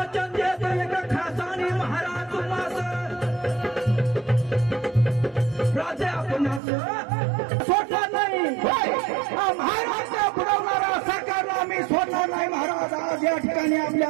देतो एका खासाने महाराज तुम्हास, राजा आपणास सोडणार नाही. महाराज बुडवणारा सरकारला आम्ही सोडणार नाही महाराज. आज या ठिकाणी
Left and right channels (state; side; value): drops out; left; at 6.6 s